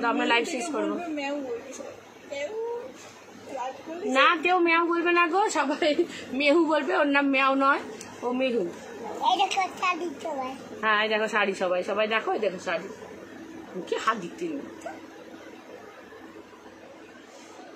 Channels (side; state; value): both; identical; correlation 1.00